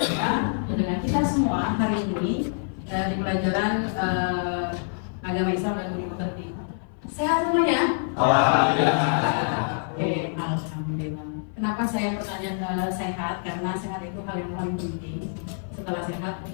dengan kita semua hari ini di pelajaran agama Islam dan budi pekerti. Sehat semuanya? Alhamdulillah. Oke, alhamdulillah. Kenapa saya bertanya sehat? Karena sehat itu hal yang paling penting. Setelah sehat,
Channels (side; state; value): right; silent; 56 dB below the other